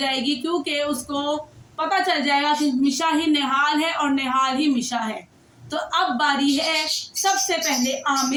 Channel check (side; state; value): both; identical; correlation 1.00